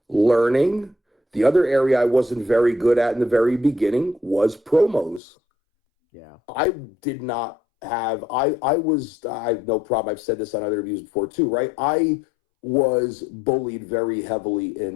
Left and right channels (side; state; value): right; drops out; at 5.2 s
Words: learning. The other area I wasn't very good at in the very beginning was promos. Yeah. I did not have, I have no problem. I've said this on other interviews before too, right? I was bullied very heavily